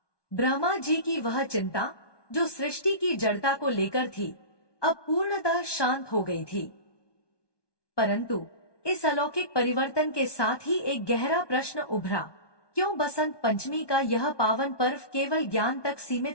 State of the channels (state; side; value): late; right; 1.2 ms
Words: ब्रह्मा जी की वह चिंता, जो सृष्टि की जड़ता को लेकर थी, अब पूर्णतः शांत हो गई थी। परंतु इस अलौकिक परिवर्तन के साथ ही एक गहरा प्रश्न उभरा, क्यों बसंत पंचमी का यह पावन पर्व केवल ज्ञान तक